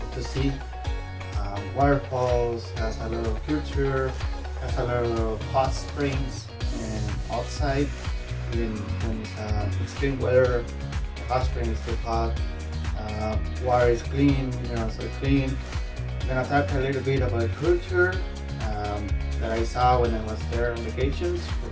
to see. Waterfalls, has a lot of culture, has a lot of hot springs and outside. Even when it's extreme weather, the hot spring is too hot. Water is clean, so clean. I'm gonna talk a little bit about culture that I saw when I was there on vacations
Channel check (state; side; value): identical; both; correlation 1.00